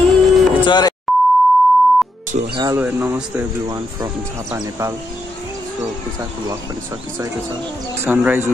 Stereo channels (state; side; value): normal; both; correlation 0.81